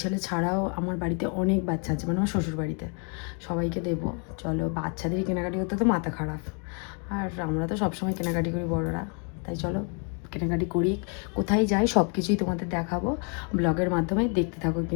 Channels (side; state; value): right; quieter; 38.8 dB